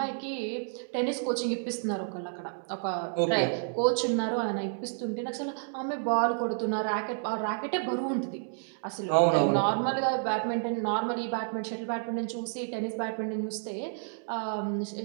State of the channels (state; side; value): silent; left; digital silence